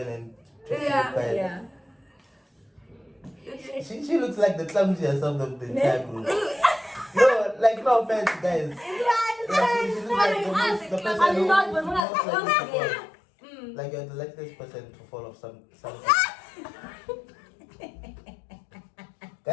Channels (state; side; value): drops out; right; at 12.1 s